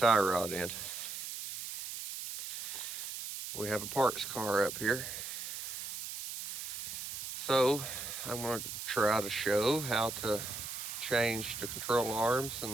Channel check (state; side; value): noise; right; hiss, 6 dB below the sound